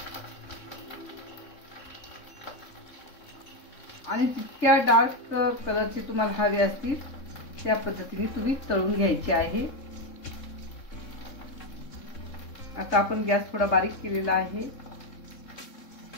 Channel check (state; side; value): late; right; 3.6 ms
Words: आणि जितक्या डार्क कलरचे तुम्हाला हवे असतील त्या पद्धतीने तुम्ही तळून घ्यायचे आहे। आता आपण गॅस थोडा बारीक केलेला आहे